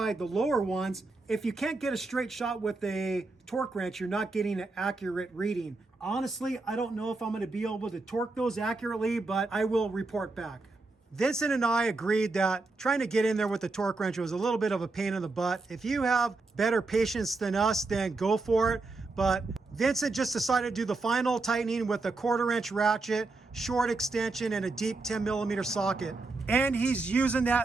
the lower ones, if you can't get a straight shot with a torque wrench, you're not getting an accurate reading. Honestly, I don't know if I'm gonna be able to torque those accurately, but I will report back. Vincent and I agreed that trying to get in there with the torque wrench was a little bit of a pain in the butt. If you have better patience than us, then go for it. But Vincent just decided to do the final tightening with a 1/4 inch ratchet, short extension, and a deep 10mm socket. And he's using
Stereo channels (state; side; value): quieter; left; 3.5 dB